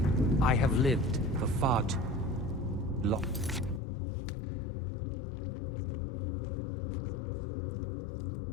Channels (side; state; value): right; drops out; at 3.8 s